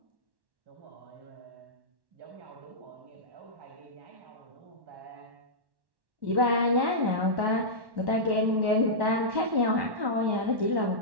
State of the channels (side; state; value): left; late; 1.1 ms